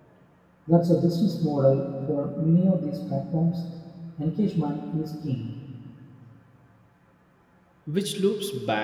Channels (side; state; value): both; identical; correlation 1.00